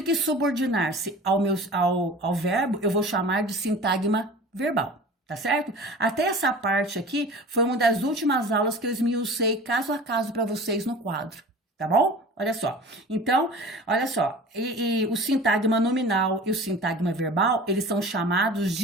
que subordinar-se ao verbo, eu vou chamar de sintagma verbal. Tá certo? Até essa parte aqui foi uma das últimas aulas que eu esmiucei caso a caso para vocês no quadro, tá bom? Olha só. Então, olha só, e o sintagma nominal e o sintagma verbal, eles são chamados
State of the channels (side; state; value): both; normal; correlation 0.39